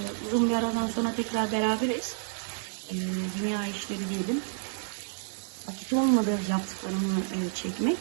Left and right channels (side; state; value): left; silent; digital silence